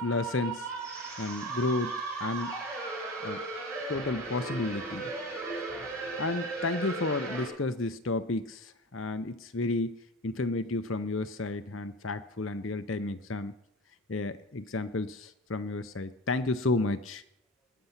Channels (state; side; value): normal; both; correlation 0.32